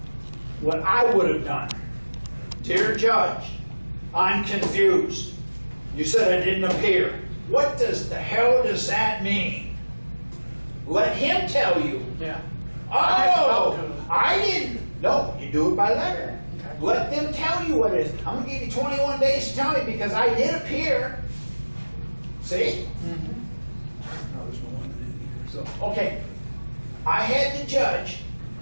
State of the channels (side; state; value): both; inverted; correlation -1.00